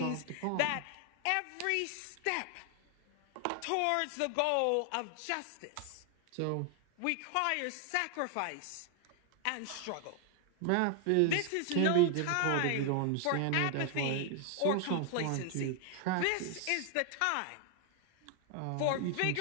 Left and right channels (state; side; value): different; both; correlation 0.00